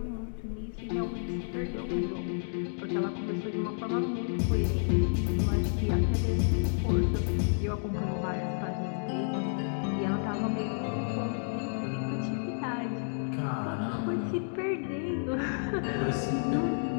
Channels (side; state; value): right; silent; digital silence